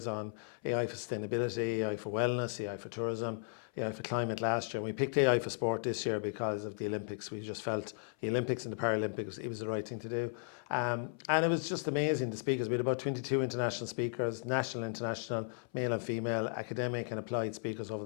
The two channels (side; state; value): right; silent; 54 dB below the other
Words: on AI for sustainability, AI for wellness, AI for tourism, AI for climate last year. And we picked AI for Sport this year because of the Olympics. We just felt the Olympics and the Paralympics, it was the right thing to do. And it was just amazing, the speakers. We had about 22 international speakers, national, international, male and female, academic and applied speakers over